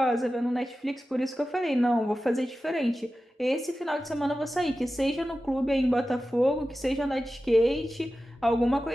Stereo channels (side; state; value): both; normal; correlation 0.94